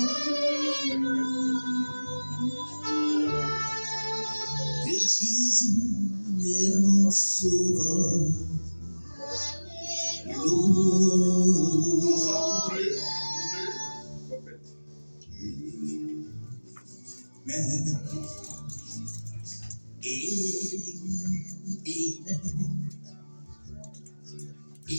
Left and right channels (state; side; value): inverted; both; correlation -1.00